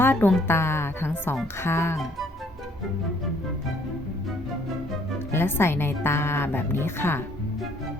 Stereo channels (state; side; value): normal; both; correlation 0.63